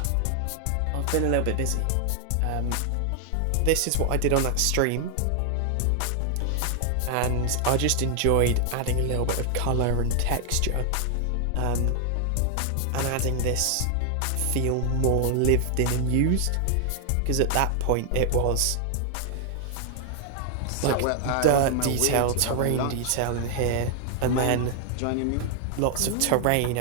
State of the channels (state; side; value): different; both; correlation 0.00